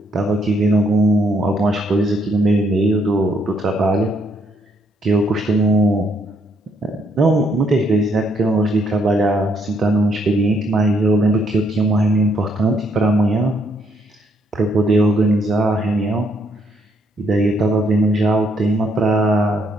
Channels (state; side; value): normal; both; correlation 0.72